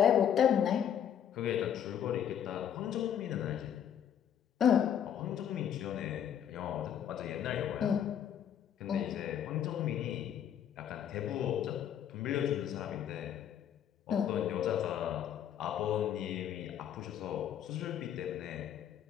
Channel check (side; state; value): right; quieter; 9.4 dB